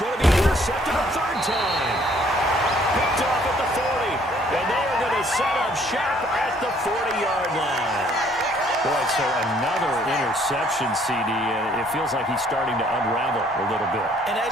to be intercepted a 3rd time. Picked off at the 40. And they are going to set up shop at the 40-yard line. Boy, so another interception, CD, and it feels like he's starting to unravel a little bit. And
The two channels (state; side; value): normal; both; correlation 0.62